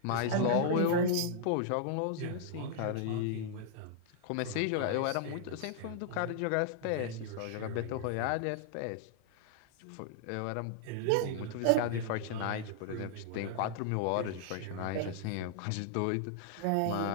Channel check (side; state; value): both; different; correlation -0.01